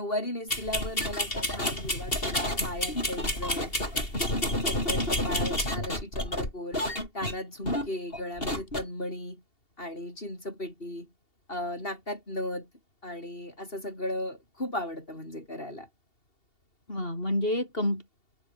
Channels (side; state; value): right; late; 2.7 ms